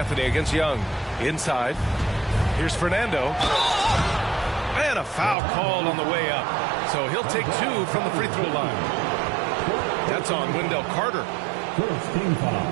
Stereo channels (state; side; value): drops out; left; at 5.4 s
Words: against Young. Inside. Here's Fernando. And a foul called on the way up. So he'll take 2 from the free throw line. That's on Wendell Carter. First team